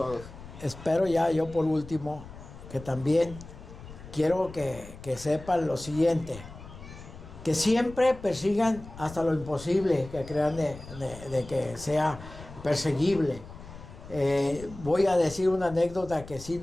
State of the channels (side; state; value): left; noise; rumble, 16 dB below the sound